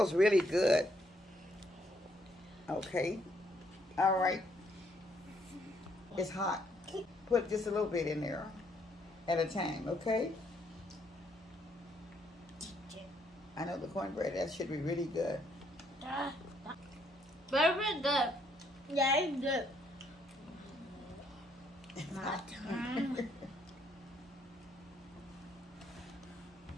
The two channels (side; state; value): both; normal; correlation 0.70